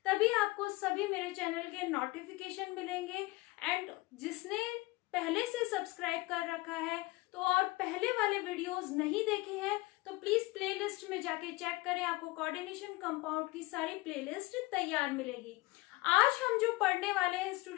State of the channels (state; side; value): quieter; right; 21.4 dB